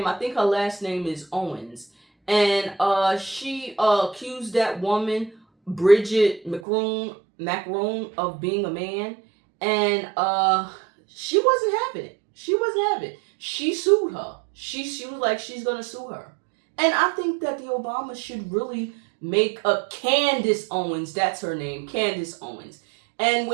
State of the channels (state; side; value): drops out; left; at 6.7 s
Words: I think her last name is Owens. And she accused that woman, Bridget McCroom, Macron of being a man, and she wasn't having it. She wasn't having it. She sued her. She was like, she's gonna sue her. And I think that the Obamas should really make a Candace Owens, that's her name, Candace Owens. And